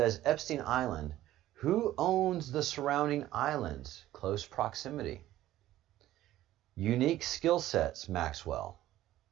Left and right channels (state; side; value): quieter; left; 14.3 dB